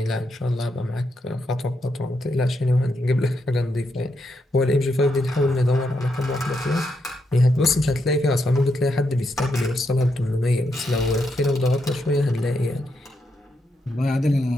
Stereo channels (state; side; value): normal; both; correlation 0.81